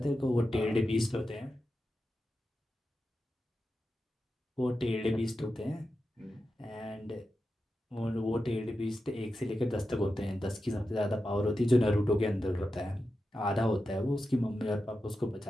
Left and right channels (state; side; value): normal; both; correlation 0.90